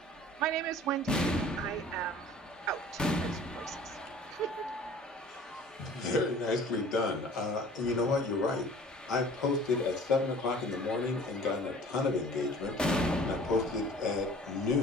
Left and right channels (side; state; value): both; normal; correlation 0.48